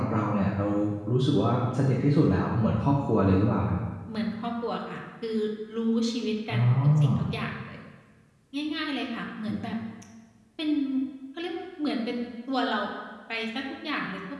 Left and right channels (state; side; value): identical; both; correlation 1.00